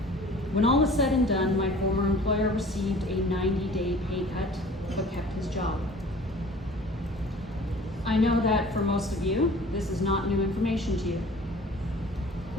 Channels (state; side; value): normal; both; correlation 0.47